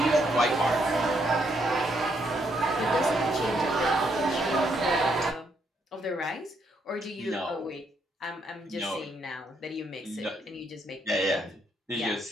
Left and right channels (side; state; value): both; normal; correlation 0.75